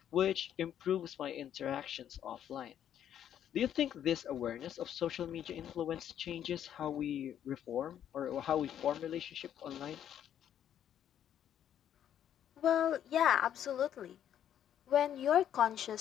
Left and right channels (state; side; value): quieter; right; 10.1 dB